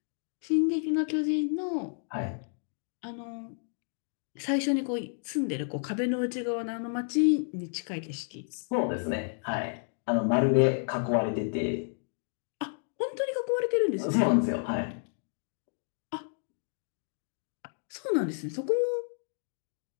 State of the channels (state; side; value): silent; right; 57 dB below the other